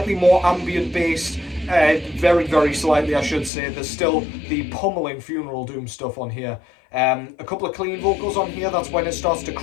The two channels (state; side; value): drops out; right; at 3.5 s